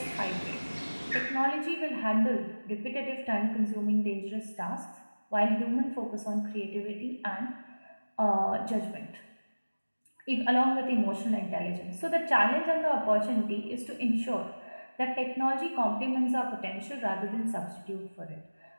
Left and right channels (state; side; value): inverted; both; correlation -1.00